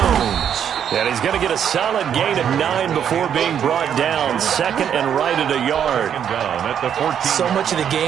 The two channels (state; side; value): quieter; left; 8.8 dB